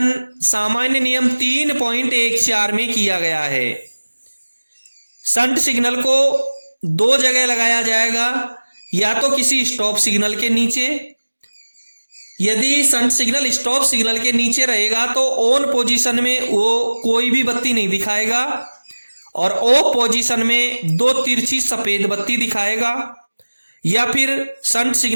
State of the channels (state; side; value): inverted; both; correlation -1.00